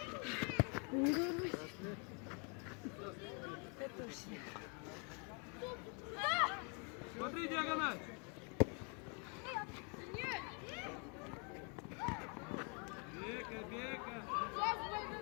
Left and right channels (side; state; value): right; quieter; 36.1 dB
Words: Смотри, диагональ. Бека, Бека.